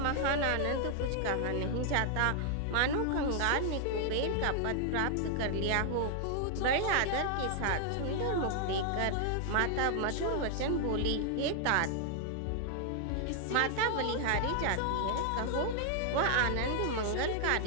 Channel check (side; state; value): both; different; correlation 0.00